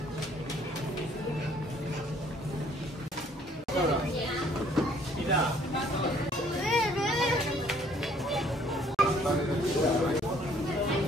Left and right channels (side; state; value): both; normal; correlation 0.61